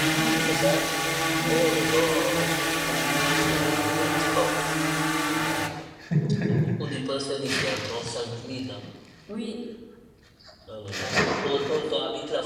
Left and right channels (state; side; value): identical; both; correlation 1.00